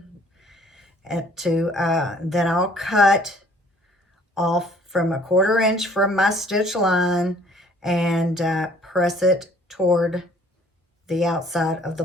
and then I'll cut off from 1/4 inch from my stitch line and press it toward the outside of the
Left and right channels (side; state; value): both; normal; correlation 0.57